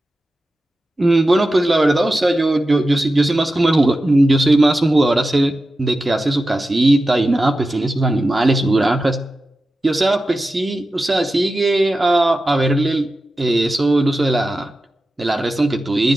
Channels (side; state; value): both; normal; correlation 0.93